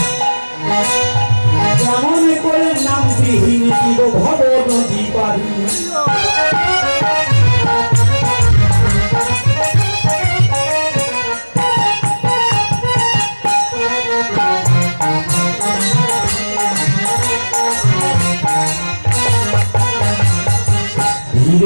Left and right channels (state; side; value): inverted; both; correlation -1.00